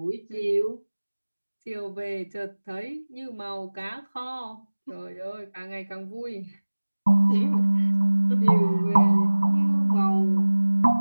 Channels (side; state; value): both; inverted; correlation -1.00